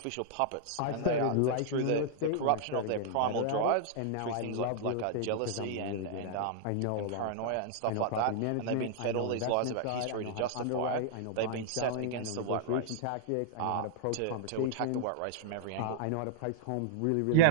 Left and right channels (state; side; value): different; both; correlation -0.01